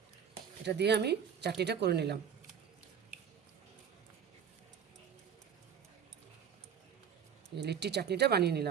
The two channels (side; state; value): left; quieter; 7.8 dB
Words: এটা দিয়ে আমি চাটনিটা করে নিলাম। লিট্টি চাটনিটা বানিয়ে